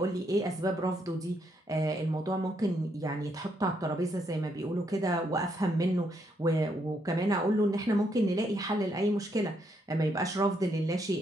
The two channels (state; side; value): normal; both; correlation 0.75